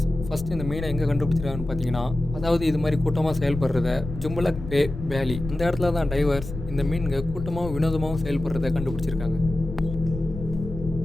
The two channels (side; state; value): left; noise; rumble, 9 dB below the sound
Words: ஃபஸ்ட்டு இந்த மீனை எங்கே கண்டுபிடிச்சிருக்காங்கன்னு பார்த்தீங்கன்னா, அதாவது இது மாதிரி கூட்டமாக செயல்படுறத ஜும்பலக் பே வேலி இந்த இடத்துல தான் டைவர்ஸ் இந்த மீன்க கூட்டமாகவும் வினோதமாகவும் செயல்படுறத கண்டுபிடிச்சிருக்காங்க.